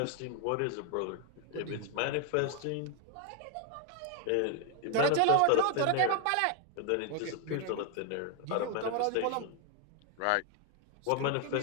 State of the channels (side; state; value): both; different; correlation 0.01